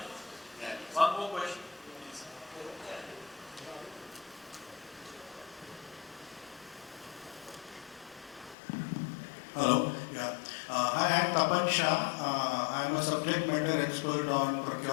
Yeah. One more question, please. Hello. Yeah. Hi, I'm Tapan Shah. I'm a subject matter expert on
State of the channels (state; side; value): drops out; right; at 8.6 s